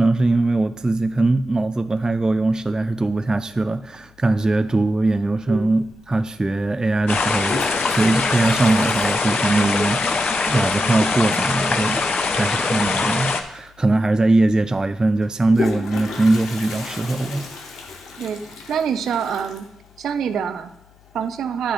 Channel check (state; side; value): noise; left; hum, 30 dB below the sound